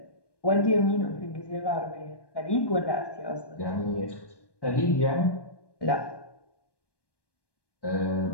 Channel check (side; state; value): right; late; 1.2 ms